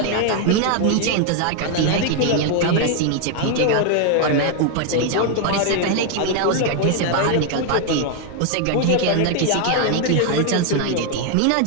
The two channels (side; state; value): both; different; correlation 0.01